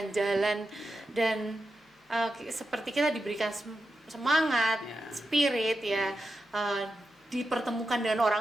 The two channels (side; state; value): both; normal; correlation 0.89